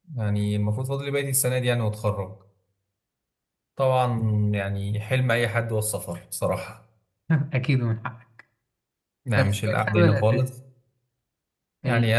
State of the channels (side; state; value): both; identical; correlation 1.00